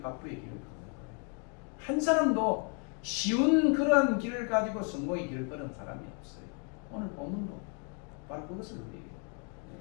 길을 걷는 거예요. 한 사람도 쉬운 그런 길을 가지고 성공의 길을 걸은 사람이 없어요. 오늘 본문도 바로 그것을 우리에게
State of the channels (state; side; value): quieter; right; 39.6 dB